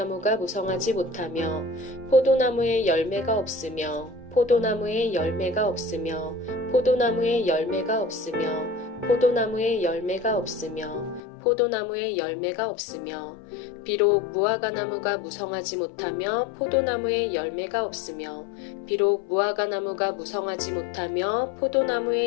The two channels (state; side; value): drops out; right; at 11.2 s